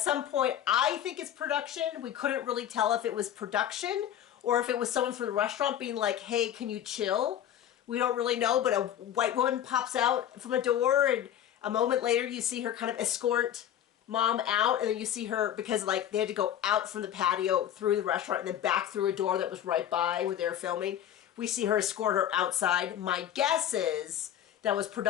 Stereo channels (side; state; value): right; quieter; 10.7 dB